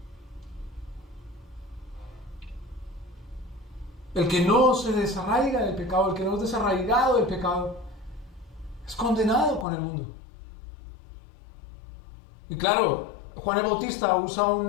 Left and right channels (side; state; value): right; drops out; at 9.7 s